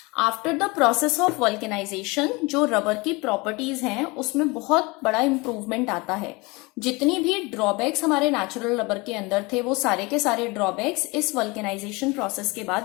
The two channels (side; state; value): right; quieter; 25.4 dB